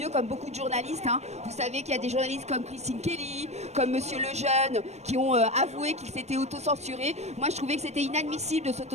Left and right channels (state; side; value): late; left; 0.32 ms